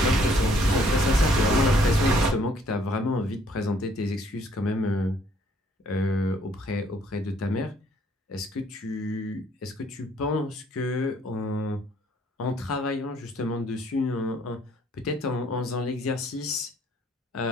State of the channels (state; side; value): normal; both; correlation 0.64